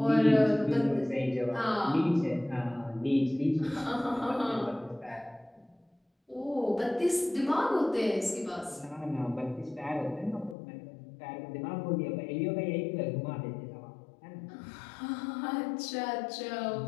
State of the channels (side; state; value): right; drops out; at 10.6 s